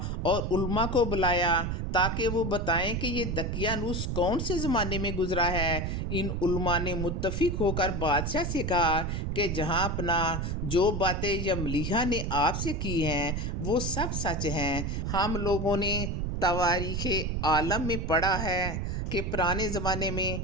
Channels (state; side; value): noise; right; rumble, 2 dB below the sound